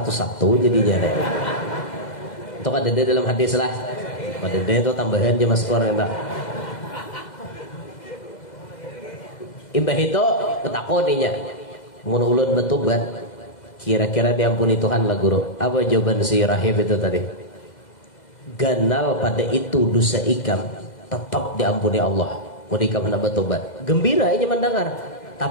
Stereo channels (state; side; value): late; right; 2.0 ms